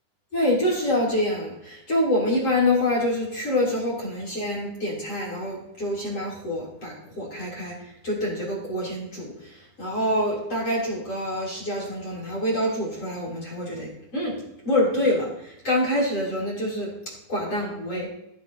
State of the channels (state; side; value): late; right; 9.9 ms